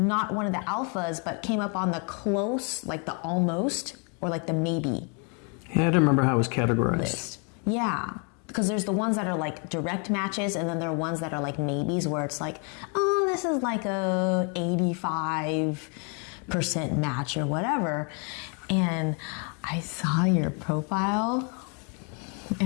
one of the alphas, but came up on the close, like the almost, or like the maybe. Yeah, I don't remember how it was categorized. List. Yeah. Because there's the ones that are like direct matches, and then there are ones that are like maybes, where it's like, oh, this is like a 85% match or whatever. And I saw your profile,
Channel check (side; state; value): right; quieter; 37.4 dB